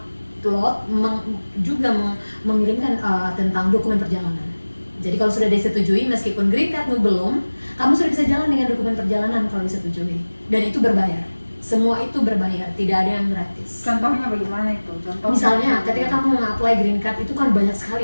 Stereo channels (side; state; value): both; inverted; correlation -1.00